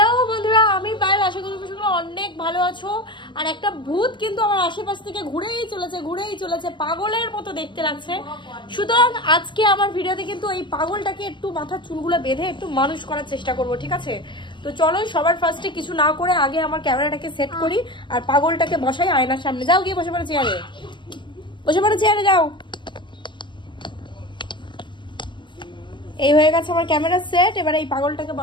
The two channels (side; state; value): right; late; 0.23 ms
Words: বন্ধুরা, আমি পায়েল। আশা করি তোমরা অনেক ভালো আছো। আর একটা ভূত কিন্তু আমার আশেপাশ থেকে ঘুরেই চলেছে, পাগলের মতো দেখতে লাগছে। সুতরাং আজকে আমার ভিডিওতে কিন্তু এই পাগলটাকে একটু মাথার চুলগুলো বেঁধে একটু মানুষ করার চেষ্টা করব, ঠিক আছে? তো চলো সবার ফার্স্টে কিছু না করে আগে আমার ক্যামেরাটাকে সেট করি আর পাগলটাকে বসাই আয়নার সামনে। যাও গিয়ে বসে পড়ো চেয়ারে, যাও। এই হয়ে গেছে আমার ক্যামেরা সেট। এবার এই পাগলটাকে